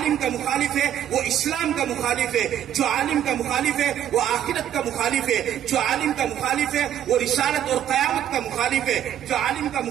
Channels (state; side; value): quieter; left; 10.6 dB